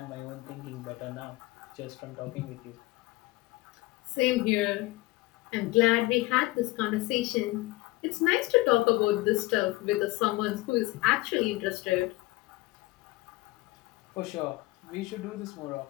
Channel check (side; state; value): right; quieter; 20.3 dB